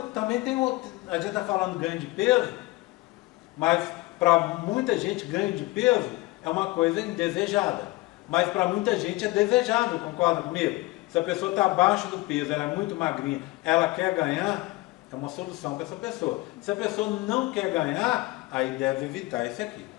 também tem outro, a gente está falando ganho de peso, mas para muita gente ganho de peso é uma coisa indesejada. Mas para muita gente é desejável, concorda comigo? Se a pessoa está abaixo do peso, ela é muito magrinha, ela quer ganhar, é uma solução para essa pessoa. Se a pessoa não quer ganhar, aí deve evitar esse aqui.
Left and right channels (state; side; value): quieter; right; 21.0 dB